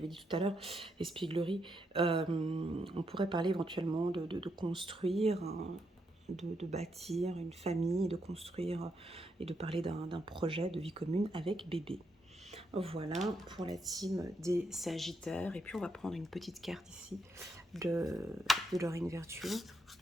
dit tout à l'heure, espièglerie. On pourrait parler éventuellement de construire, hein, de bâtir une famille, de construire et de parler d'un projet de vie commune avec bébé. Voilà pour la team des Sagittaires. Et puis on va prendre une petite carte ici de Dorine Virtue.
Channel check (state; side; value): normal; both; correlation 0.79